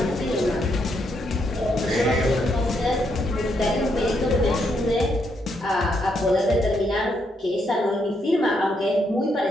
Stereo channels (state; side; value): normal; both; correlation 0.77